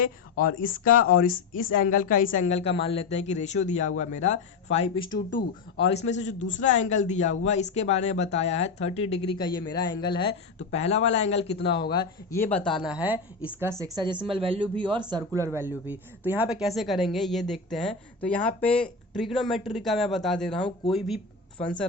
और इसका और इस एंगल का इस एंगल का मान लेते हैं कि रेशियो दिया हुआ मेरा 5:2। और इसमें से जो दूसरा एंगल दिया हुआ इसके बारे में बताया है 30 डिग्री का ये मेरा एंगल है। तो पहला वाला एंगल कितना होगा ये बताना है, इसका सेक्साडेसिमल वैल्यू भी और सर्कुलर वैल्यू भी। तो यहाँ पे कैसे करेंगे ये देखते हैं। तो यहाँ पे ट्रिग्नोमेट्री का मैं बता दे रहा हूँ, कोई भी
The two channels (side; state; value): right; quieter; 4.6 dB